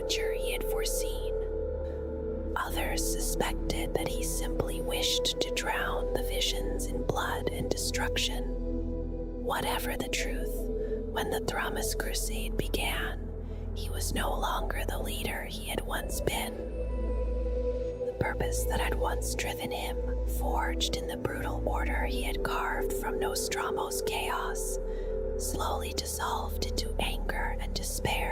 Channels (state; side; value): identical; both; correlation 1.00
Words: he had foreseen. Others suspected that he simply wished to drown the visions in blood and destruction. Whatever the truth, when the Thramas Crusade began, he was no longer the leader he had once been. The purpose that had once driven him, forged in the brutal order he had carved from Nostromo's chaos, slowly dissolved into anger and